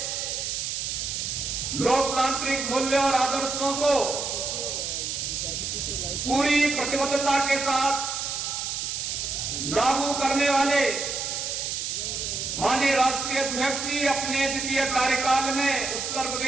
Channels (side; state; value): right; noise; hiss, 3 dB below the sound